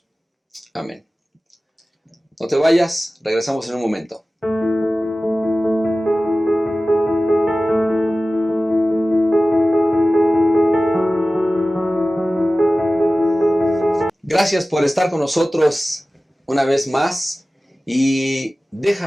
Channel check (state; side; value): normal; both; correlation 0.96